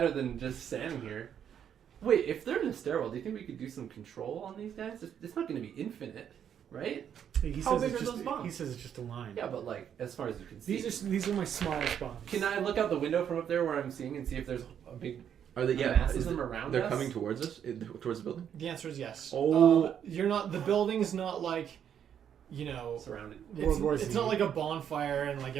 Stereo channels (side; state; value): left; quieter; 8.9 dB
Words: than just standing here. Wait, if they're in a stairwell, do you think we could do some control on these guys? It's not going to be infinite, right? He How says big it's are just, those bombs? He says it's just a line. Yeah, but like as far as you can see. These are my smallest bombs. Can I look out the window from up there where I'm seeing and see if there's a big Are they? Yeah. mass of is them it- around They're us? coming towards us, towards the building. The answer is yes. Oh. You're not. The building's not like, you know, surrounded. World War Z. It's not like a bonfire and like